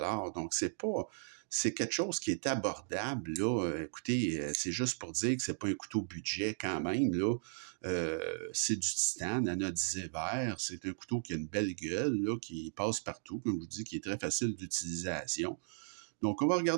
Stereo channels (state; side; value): silent; left; digital silence